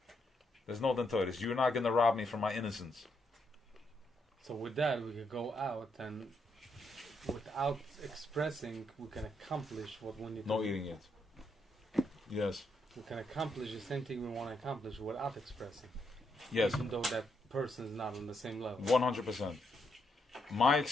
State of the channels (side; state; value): both; normal; correlation 0.78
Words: There's no dentoides. You're not going to rob me from my innocence. So with that, we can go out and without expressing, we can accomplish what we need to do. No eating it. Yes. We can accomplish the same thing we want to accomplish without expressing. Yes. Even though that person is not on the same level. 100%. My